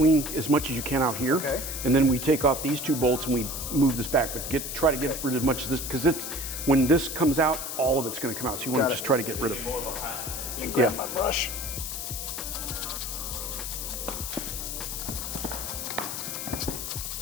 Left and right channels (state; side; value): noise; left; hiss, 5 dB below the sound